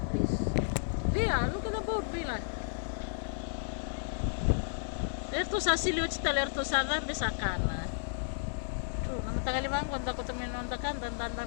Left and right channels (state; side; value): silent; right; digital silence